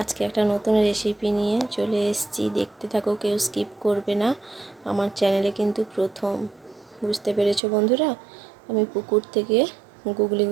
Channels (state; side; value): drops out; left; at 7.6 s